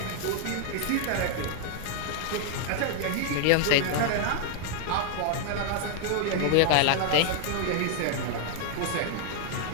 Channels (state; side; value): different; both; correlation 0.00